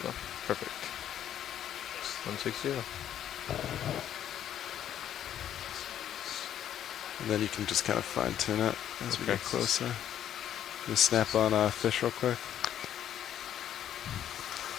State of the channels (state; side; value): quieter; right; 10.5 dB